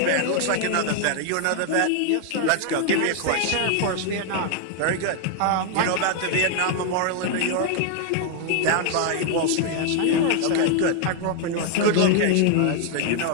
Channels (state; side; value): different; both; correlation 0.00